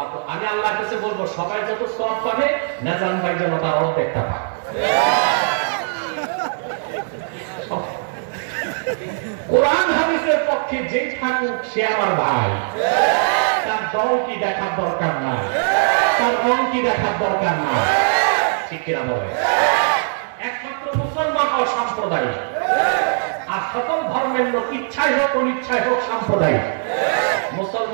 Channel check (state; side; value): silent; left; digital silence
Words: আমি আল্লাহর কাছে বলবো সবাই যত সওয়াব পাবে নিজাম ভাই যেন তার অর্ধেকটা পায়। কোরআন হাদিসের পক্ষে যে থাকুক সে আমার ভাই, তার দল কি দেখার দরকার নাই, তার রং কি দেখার দরকার নাই, ঠিক কিনা বলে? একমাত্র মুসলমান অসাম্প্রদায়িক, আর সকল ধর্মের লোক ইচ্ছাই হোক অনিচ্ছাই হোক সাম্প্রদায়িক।